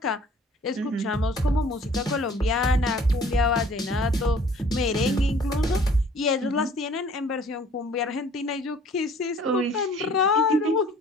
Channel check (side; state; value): both; normal; correlation 0.54